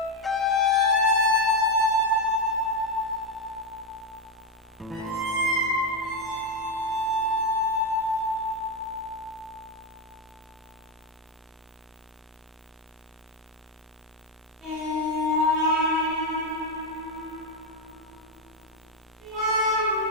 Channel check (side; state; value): both; normal; correlation 0.06